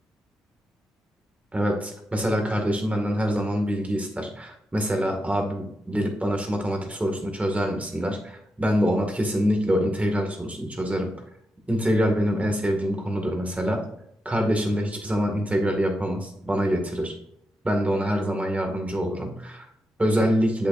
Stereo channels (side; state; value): both; normal; correlation 0.87